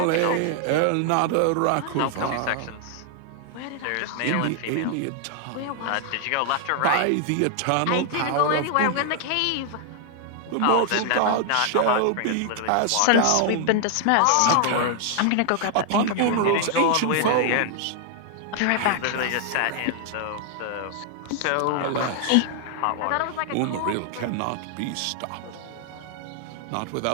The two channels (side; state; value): both; different; correlation 0.00